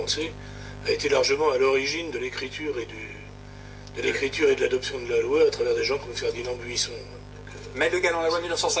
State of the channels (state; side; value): identical; both; correlation 1.00